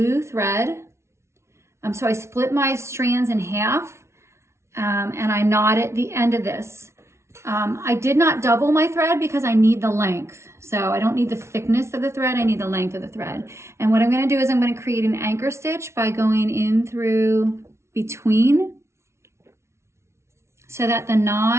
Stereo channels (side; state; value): left; late; 0.13 ms